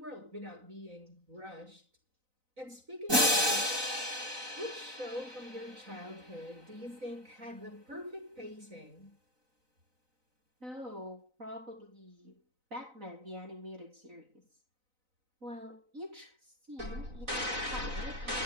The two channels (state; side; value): late; left; 3.9 ms